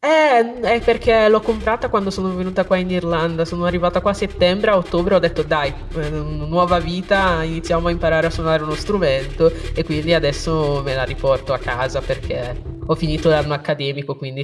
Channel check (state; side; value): identical; both; correlation 1.00